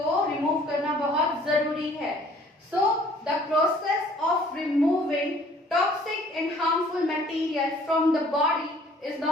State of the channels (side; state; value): both; normal; correlation 0.56